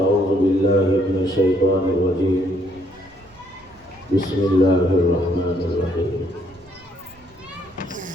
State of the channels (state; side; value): noise; right; rumble, 28 dB below the sound